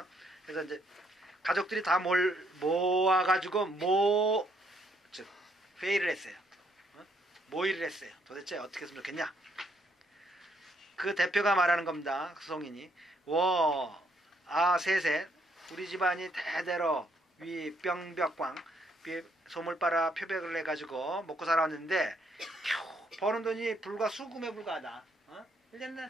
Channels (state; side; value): normal; both; correlation 0.71